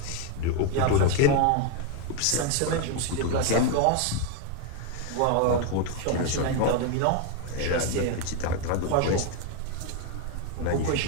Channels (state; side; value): different; both; correlation 0.01